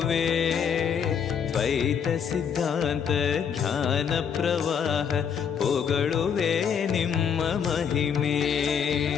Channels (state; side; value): quieter; right; 7.4 dB